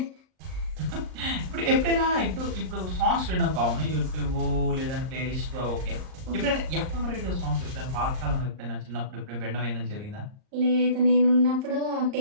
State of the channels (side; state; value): left; late; 38 ms